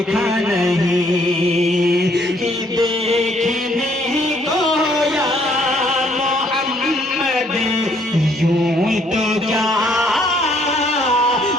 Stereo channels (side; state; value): both; normal; correlation 0.66